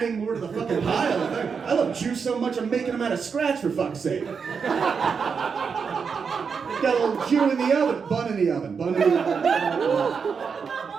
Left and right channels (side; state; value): left; quieter; 5.9 dB